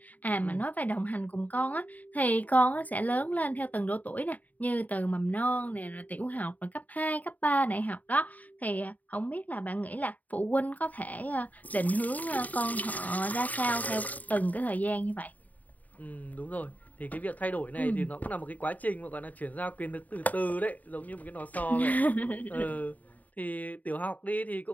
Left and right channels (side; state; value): right; late; 0.076 ms